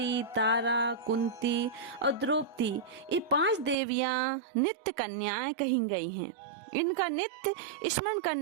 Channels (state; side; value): drops out; left; at 3.8 s